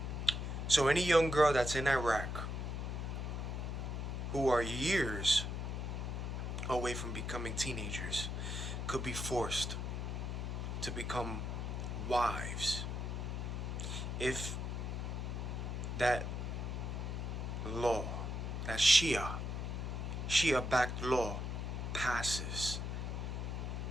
So any young girl that's in Iraq who are years away from becoming teenagers could be forced to become wives if that law, that Shia-backed law passes.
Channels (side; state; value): left; noise; hum, 3 dB below the sound